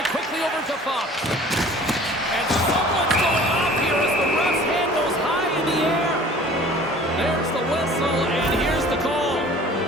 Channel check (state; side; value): normal; both; correlation 0.48